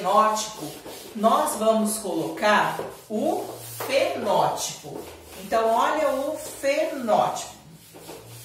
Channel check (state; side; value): identical; both; correlation 1.00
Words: nós vamos colocar o fenótipo. Então, olha o fenótipo.